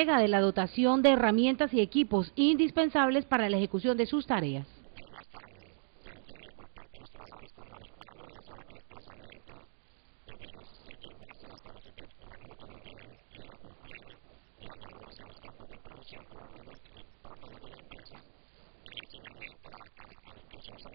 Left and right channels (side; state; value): left; silent; digital silence